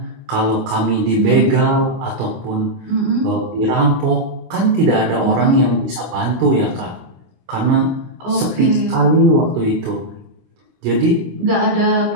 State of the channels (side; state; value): left; late; 16 ms